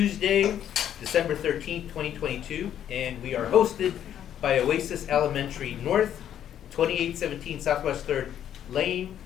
December 13th, 2022, and we are hosted by Oasis Elementary North, 2817 Southwest 3rd Lane,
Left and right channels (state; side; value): quieter; right; 10.2 dB